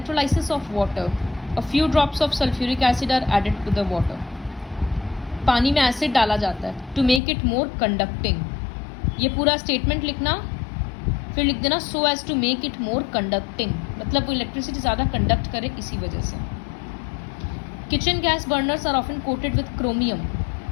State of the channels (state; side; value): drops out; right; at 7.2 s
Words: of water. A few drops of sulfuric acid are added to the water. पानी में एसिड डाला जाता है to make it more conducting. ये पूरा स्टेटमेंट लिखना, फिर लिख देना so as to make it more conducting, मतलब वो इलेक्ट्रिसिटी ज़्यादा कंडक्ट करे इसी वजह से। Kitchen gas burners are often coated with chromium,